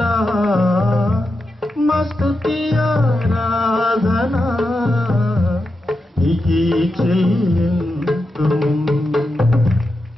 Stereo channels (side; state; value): both; normal; correlation 0.88